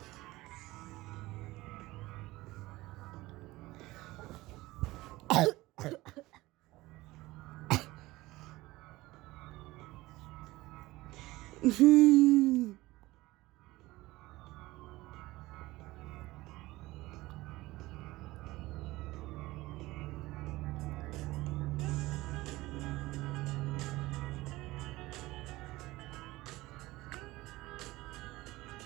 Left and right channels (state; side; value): quieter; left; 19.1 dB